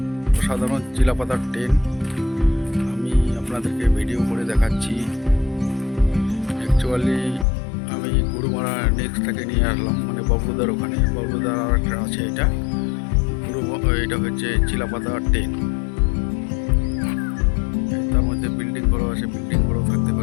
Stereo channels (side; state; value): right; drops out; at 7.5 s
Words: অসাধারণ চিলাপাতার টেন্ট। আমি আপনাদেরকে ভিডিও করে দেখাচ্ছি। অ্যাকচুয়ালি আমি গুরুমারা নেক্সটটাকে নিয়ে আসলাম, মানে বাবলুদার ওখানে। বাবলুদার আর একটা আছে, এটা হচ্ছে চিলাপাতার টেন্ট। তার মধ্যে বিল্ডিং বড় আছে, বিল্ডিং বড় থাকতে